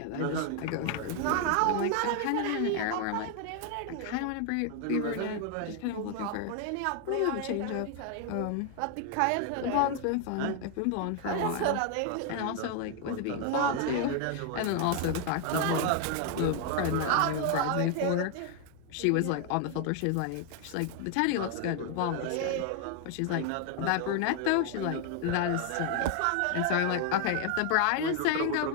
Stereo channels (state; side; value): different; both; correlation 0.01